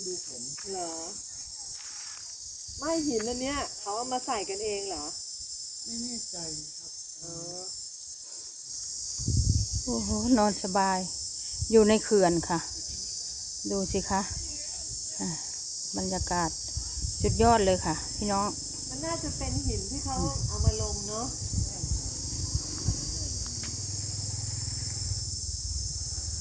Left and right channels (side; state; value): both; identical; correlation 1.00